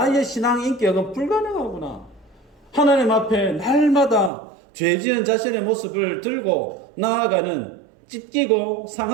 신앙 인격은 불가능하구나. 하나님 앞에 날마다 죄지은 자신의 모습을 들고 나아가는 찢기고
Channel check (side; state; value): left; drops out; at 4.3 s